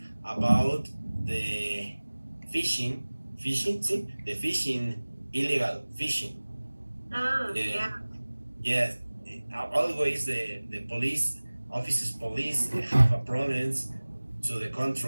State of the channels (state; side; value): inverted; both; correlation -1.00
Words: about the fishing. See, the fishing, illegal fishing. Yeah. Yes, always the police police have a problems to the